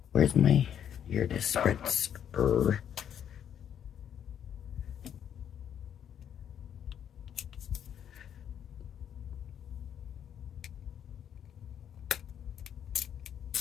Where's my, here it is, spritzer.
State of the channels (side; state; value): right; quieter; 9.2 dB